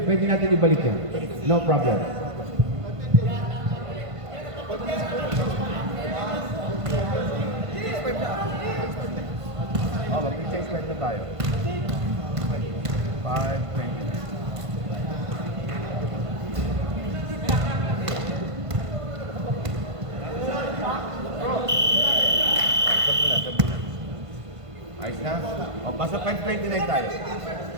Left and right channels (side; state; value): left; late; 1.5 ms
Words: natin ibalik yan. No problem. Oh, mag-change plate na tayo. 5:29. Ayos na? O, basta 5:29 tayo.